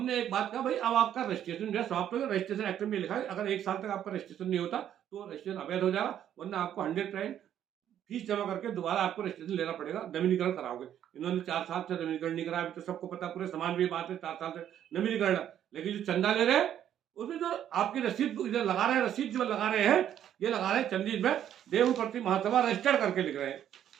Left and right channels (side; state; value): left; quieter; 10.4 dB